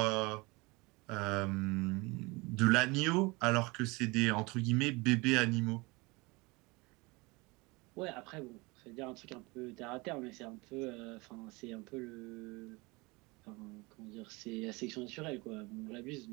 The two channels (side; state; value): left; quieter; 25.3 dB